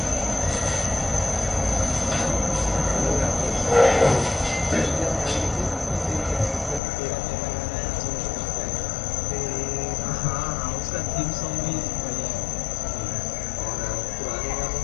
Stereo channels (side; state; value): right; drops out; at 6.8 s